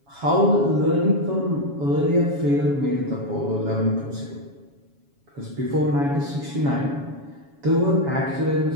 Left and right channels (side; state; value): left; late; 7.2 ms